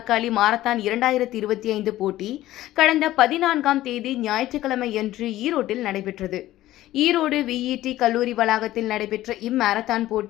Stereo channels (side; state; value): right; quieter; 15.0 dB